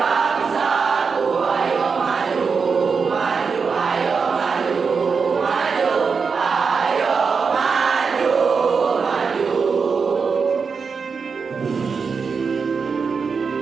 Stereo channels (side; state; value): left; quieter; 5.4 dB